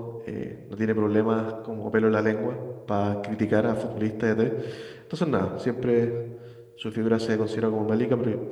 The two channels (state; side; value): identical; both; correlation 1.00